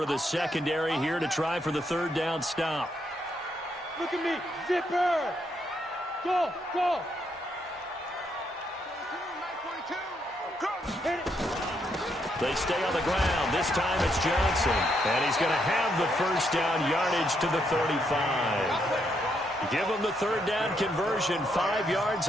of the secondary here to try for the 3rd down stop. Look at me. Zipper. Go. Hit it. They stay on the ground. This time it's Johnson. And he's going to have the first down yardage to the 35. Give him the 3rd down conversion. 5 yards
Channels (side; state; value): both; normal; correlation 0.76